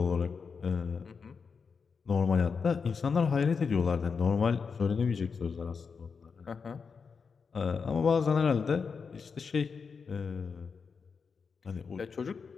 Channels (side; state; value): right; quieter; 5.5 dB